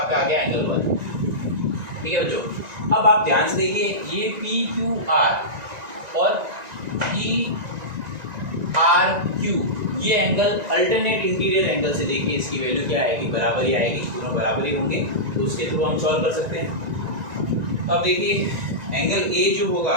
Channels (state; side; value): late; left; 1.9 ms